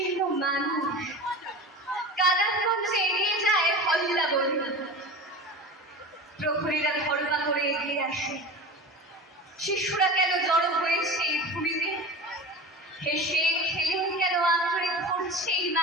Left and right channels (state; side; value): normal; both; correlation 0.32